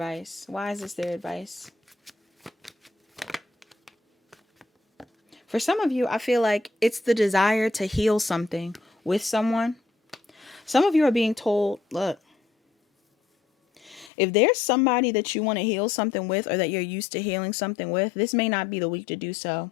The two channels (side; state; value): right; drops out; at 14.1 s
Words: Why is this their advice? For some of you, I feel like it's the desire to heal something with someone. Some of you are being told, look, if there's somebody that you want to heal something with or that you're used to healing something with, this may not be the week to do so.